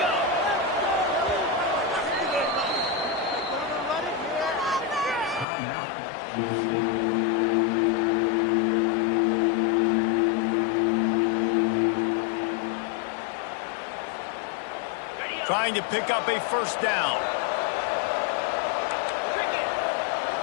Trying to pick up a 1st down.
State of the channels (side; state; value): right; drops out; at 5.5 s